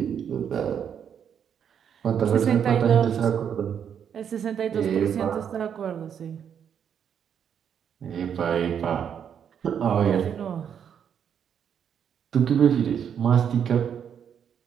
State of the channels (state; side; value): quieter; left; 8.2 dB